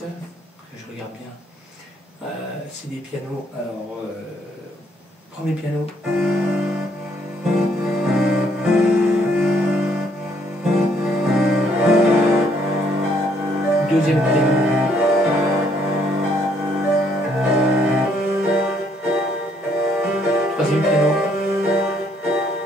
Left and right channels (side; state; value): both; normal; correlation 0.68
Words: que je regarde bien. C'est des pianos. Alors, premier piano. Deuxième piano. Troisième piano.